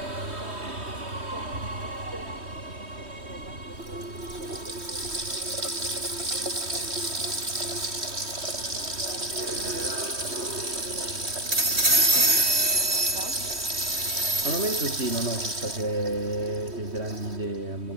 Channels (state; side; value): late; left; 3.1 ms